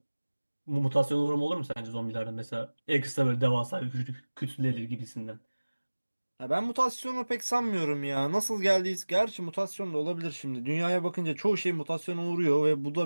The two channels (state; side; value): inverted; both; correlation -1.00